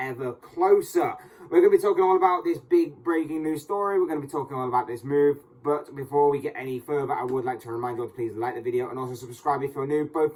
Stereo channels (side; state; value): both; identical; correlation 1.00